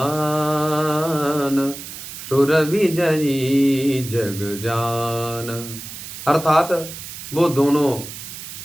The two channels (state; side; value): noise; right; hiss, 11 dB below the sound